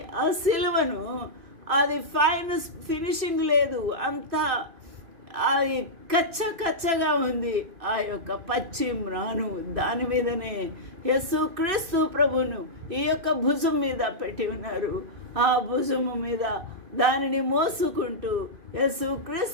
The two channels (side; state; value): left; late; 2.6 ms